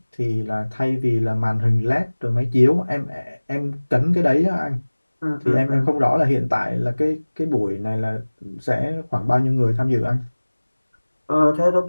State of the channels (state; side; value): inverted; both; correlation -1.00